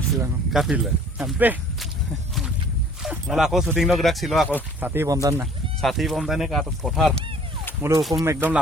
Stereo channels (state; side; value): normal; both; correlation 0.53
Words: silang. Kapil. Sampai. Malah aku syuting lo gerak silo aku. Sati pomtan na. Sati pomtane ke atas পথাৰ মোলো হুকুম একদম